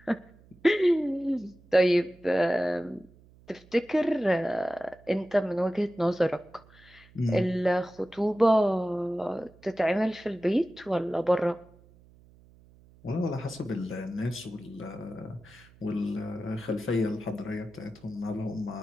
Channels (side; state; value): right; noise; hum, 26 dB below the sound